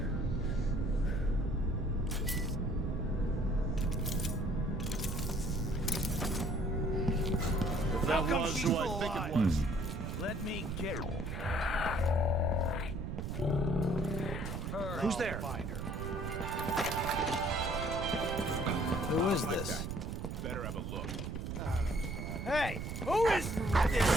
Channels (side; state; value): right; noise; rumble, 4 dB below the sound